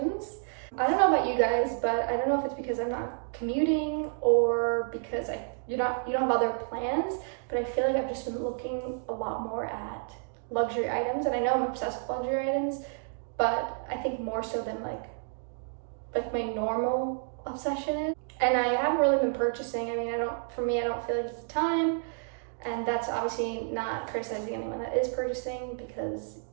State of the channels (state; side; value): silent; left; digital silence